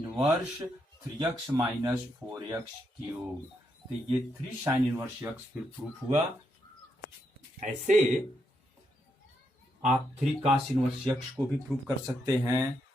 3x minus 4x cube. तो ये 3 साइन इनवर्स x फिर प्रूफ हुआ। ऐसे आप 3 cos इनवर्स x को भी प्रूफ कर सकते हैं,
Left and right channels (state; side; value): normal; both; correlation 0.80